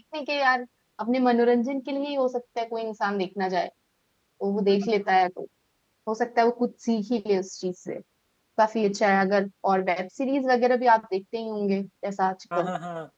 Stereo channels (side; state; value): both; identical; correlation 1.00